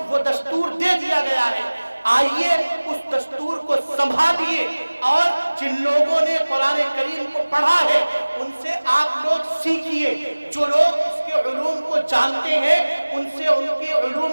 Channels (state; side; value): inverted; both; correlation -1.00